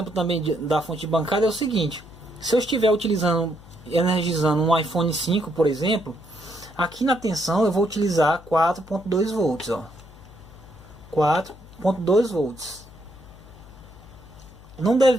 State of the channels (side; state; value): left; noise; hum, 20 dB below the sound